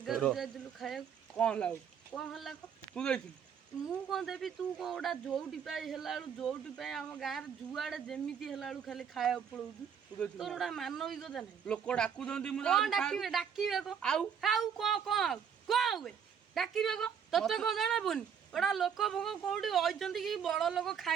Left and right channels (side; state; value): left; quieter; 7.5 dB